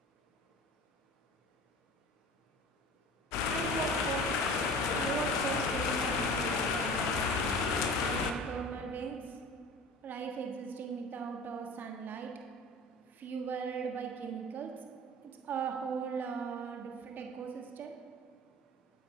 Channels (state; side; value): normal; both; correlation 0.39